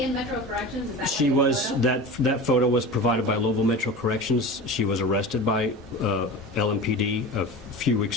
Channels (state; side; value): normal; both; correlation 0.32